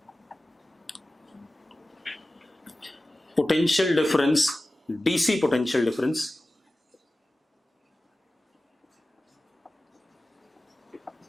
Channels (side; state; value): both; normal; correlation 0.96